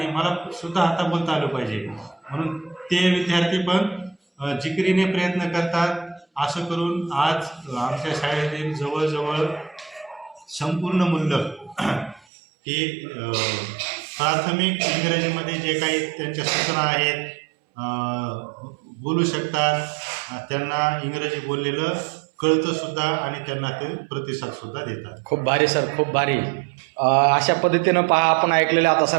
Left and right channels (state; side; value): drops out; left; at 12.2 s